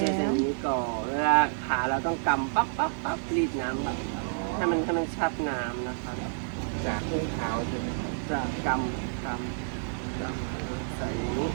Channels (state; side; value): silent; left; 58 dB below the other